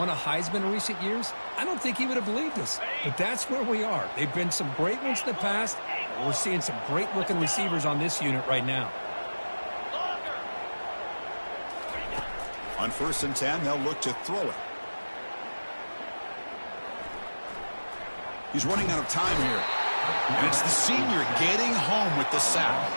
a Heisman in recent years, I don't think he would have believed us. But that's where we are. They've been some great ones in the past. We're seeing some great-looking receivers on this unit right now. On 1st and 10, they'll look to throw it. He's running out of time here. And it's the senior getting home with the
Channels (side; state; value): both; inverted; correlation -1.00